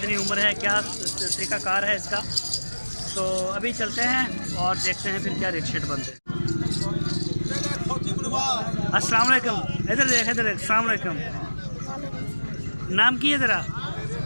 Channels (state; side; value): inverted; both; correlation -1.00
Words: उम्र है, क्या तरीक़ाकार है इसका। तो अभी चलते हैं और देखते हैं फिर क्या रेट शेट बनते हैं। अस्सलाम वालेकुम। इधर देख, इधर देख। अस्सलाम वालेकुम। नाम की है तेरा?